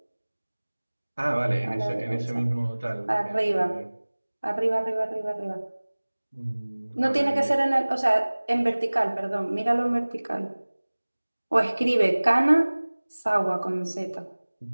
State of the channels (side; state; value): both; inverted; correlation -1.00